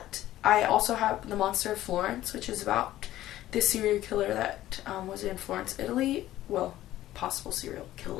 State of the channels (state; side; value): quieter; right; 14.3 dB